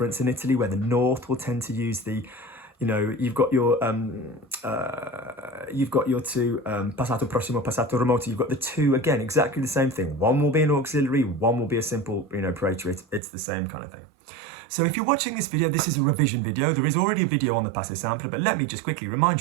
in Italy where the north will tend to use the, you know, you've got your two passato prossimo, passato remoto. You've got the two again, exactly the same thing. One will be an auxiliary, one will be a simple, you know, praetor. It's the same kind of thing. So if you're watching this video, this is a revision video. There is already a video on the passé simple, but let me just quickly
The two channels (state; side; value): drops out; left; at 13.2 s